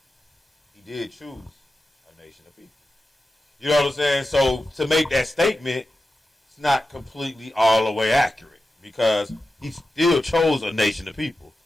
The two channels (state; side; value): normal; both; correlation 0.92